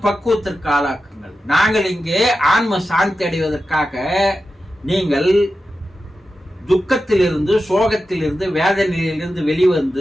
ஆளாக்குங்கள். நாங்கள் இங்கே ஆன்ம சாந்தி அடைவதற்காக நீங்கள் துக்கத்திலிருந்து, சோகத்திலிருந்து, வேதனையிலிருந்து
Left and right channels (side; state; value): both; normal; correlation 0.92